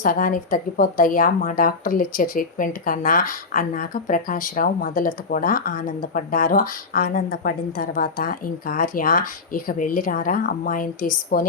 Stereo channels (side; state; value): right; quieter; 4.2 dB